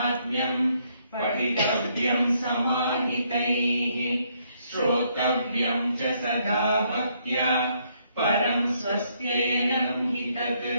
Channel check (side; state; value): both; inverted; correlation -0.71